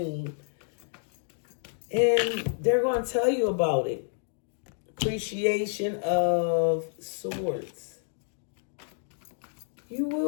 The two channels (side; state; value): right; silent; digital silence